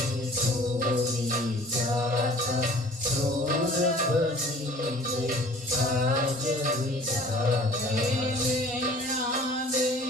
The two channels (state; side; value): normal; both; correlation 0.49